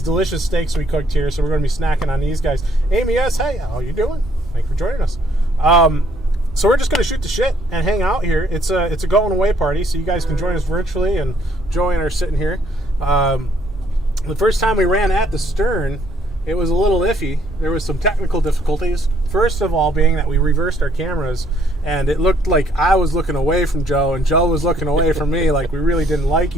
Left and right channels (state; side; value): normal; both; correlation 0.67